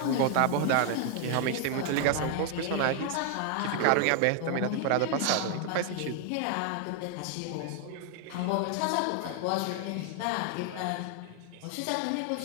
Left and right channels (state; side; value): different; both; correlation 0.00